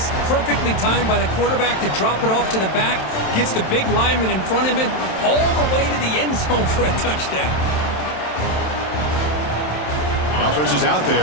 Perfectly timed by the quarterback to drop it off to the back, gets the big lineman in front of him, all the way to the end zone for a touchdown. The offense is out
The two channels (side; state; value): right; late; 27 ms